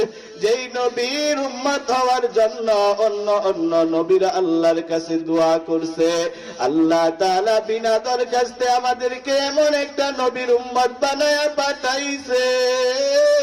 যেই নবীর উম্মত হওয়ার জন্য অন্য অন্য নবীরা আল্লাহর কাছে দোয়া করছে। আল্লাহ তাআলা বিনা দরখাস্তে আমাদেরকে এমন একটা নবীর উম্মত বানায়া পাঠাইছে,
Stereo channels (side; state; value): both; identical; correlation 1.00